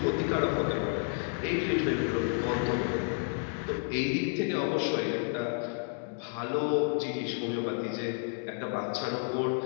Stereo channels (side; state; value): right; silent; 57 dB below the other